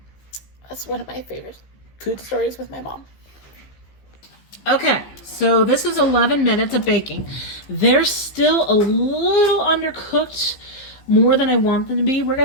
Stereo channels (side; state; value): right; late; 15 ms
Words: that's one of my favorite food stories with my mom. Okay, so this is 11 minutes of baking. They're still a little undercooked, more than I want them to be. We're